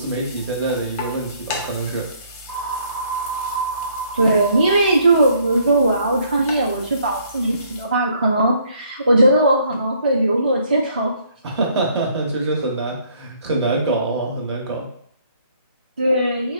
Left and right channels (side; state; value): both; inverted; correlation -0.65